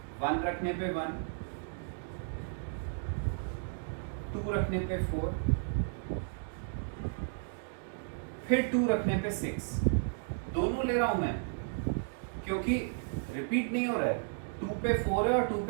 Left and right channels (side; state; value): left; silent; digital silence